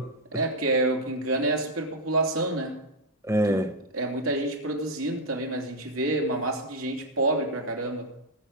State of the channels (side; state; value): both; normal; correlation -0.01